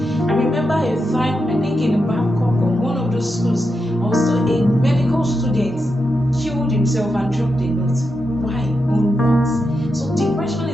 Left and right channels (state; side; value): normal; both; correlation 0.86